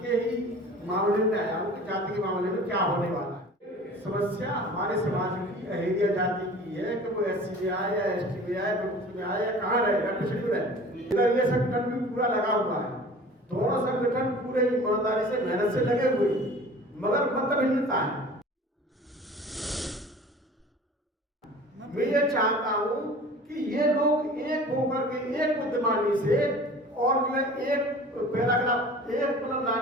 के ही मामले में आया हूँ कि जाति के मामले में क्या होने वाला है। समस्या हमारे समाज की अहेरिया जाति की है कि वो SC में आए या ST में आए, विमुक्त में आए या कहाँ रहे या पिछड़ी में रहे। इधर ये संगठन भी पूरा लगा हुआ है, दोनों संगठन पूरे ईमानदारी से मेहनत से लगे हुए, मगर मतभिन्नता है। मैं ये चाहता हूँ कि ये लोग एक होकर के एक बुद्धिमानी से और जो है एक पैराग्राफ एक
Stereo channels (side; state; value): both; normal; correlation 0.43